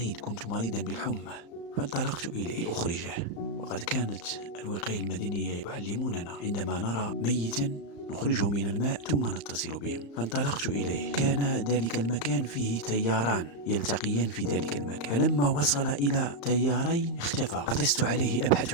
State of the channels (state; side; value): late; right; 35 ms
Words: كنت مريضا بالحمى، فانطلقت إليه لأخرجه. وقد كانت الوقاية المدنية يعلموننا عندما نرى ميتا نخرجه من الماء ثم نتصل بهم. فانطلقت إليه. كان ذلك المكان فيه تياران يلتقيان في ذلك المكان، فلما وصل إلى تيارين اختفى. عطست عليه أبحث